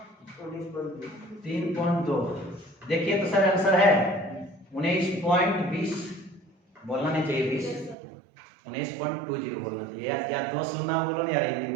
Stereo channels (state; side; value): drops out; left; at 8.0 s